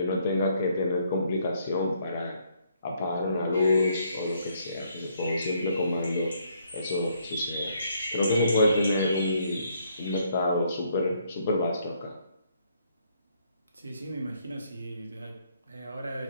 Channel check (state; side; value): inverted; both; correlation -0.70